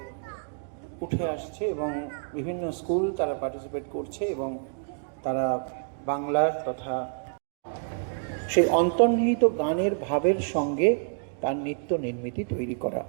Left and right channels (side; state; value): left; silent; digital silence